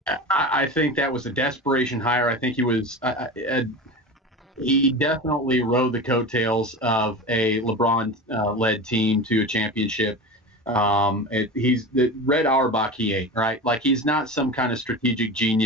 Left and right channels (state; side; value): normal; both; correlation 0.28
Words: I think that was a desperation hire. I think he was. He definitely rode the coattails of a LeBron-led team to a championship. He's the Red Auerbach he ate, right? He's not some kind of strategic